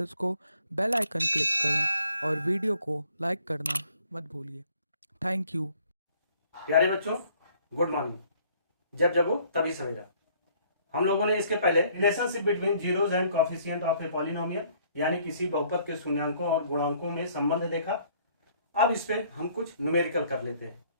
को। बेल आइकन क्लिक करें और वीडियो को लाइक करना मत भूलिए। Thank you. प्यारे बच्चों, गुड मॉर्निंग। जब जगो तभी सवेरा। हम लोगों ने इसके पहले relationship between zeros and coefficient of a polynomial यानी किसी बहुपद के शून्यांकों और गुणांकों में संबंध देखा। अब इस पे हम कुछ न्यूमेरिकल कर लेते हैं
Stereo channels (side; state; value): both; inverted; correlation -0.61